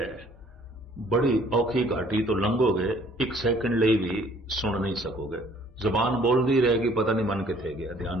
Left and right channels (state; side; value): normal; both; correlation 0.58